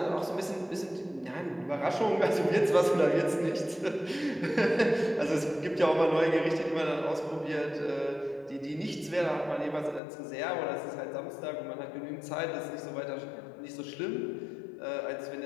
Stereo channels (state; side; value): drops out; right; at 10.0 s